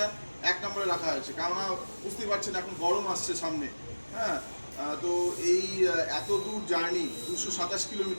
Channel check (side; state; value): both; inverted; correlation -1.00